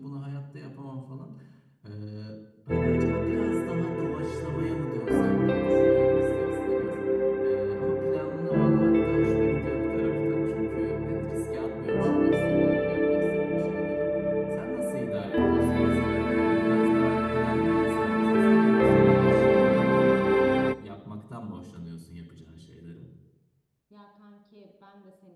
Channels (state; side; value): identical; both; correlation 1.00